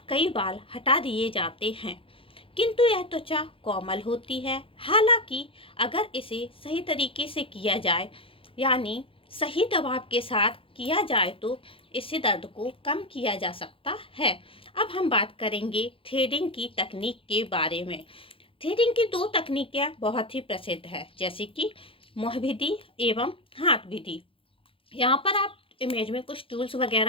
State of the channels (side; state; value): right; late; 0.26 ms